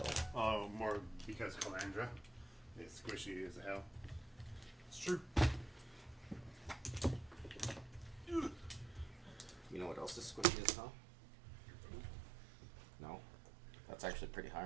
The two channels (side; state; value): left; drops out; at 10.5 s